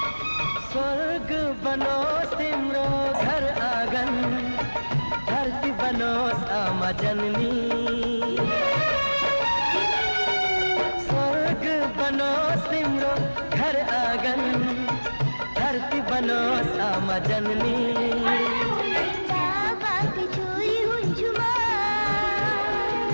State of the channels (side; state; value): both; inverted; correlation -1.00